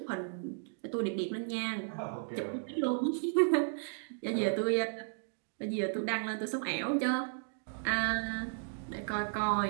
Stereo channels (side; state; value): left; silent; digital silence